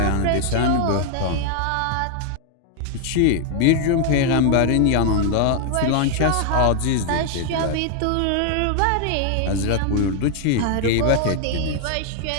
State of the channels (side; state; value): both; different; correlation 0.00